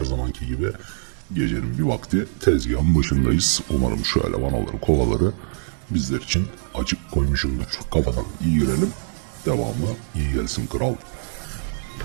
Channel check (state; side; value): silent; left; digital silence